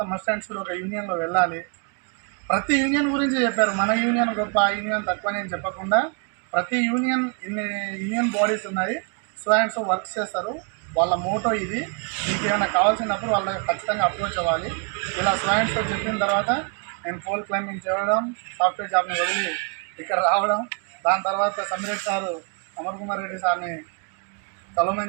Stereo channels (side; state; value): left; quieter; 38.1 dB